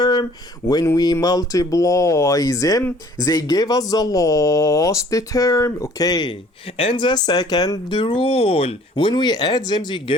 When we multiply them, they give us the last term. Okay. And the second rule, when we add them, they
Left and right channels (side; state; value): both; normal; correlation 0.54